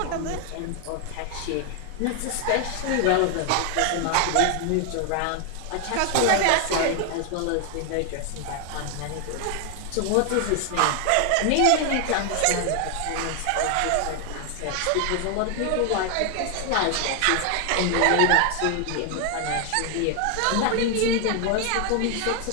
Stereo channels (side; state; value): both; different; correlation 0.01